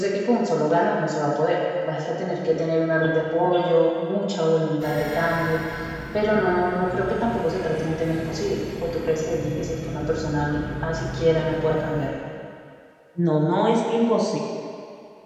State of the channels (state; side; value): identical; both; correlation 1.00